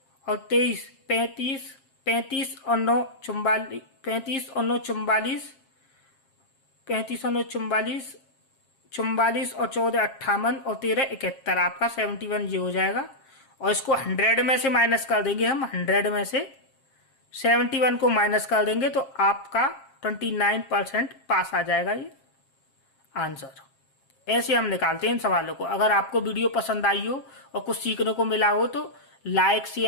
और 23 35, 35 और 9 44, 35 और 9 44, 35 और 9 44, 44 और 14 58 और 13 71, आपका 71 ये हो जाएगा। और इसको 100 में से माइनस कर देंगे हम, 100 में से 71 को माइनस कर देंगे तो आपका 29% पास आ जाएगा ये आंसर। ऐसे हम निकालते हैं इन सवालों को। अगर आपको वीडियो पसंद आई हो और कुछ सीखने को मिला हो तो लाइक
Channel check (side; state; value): right; late; 7.4 ms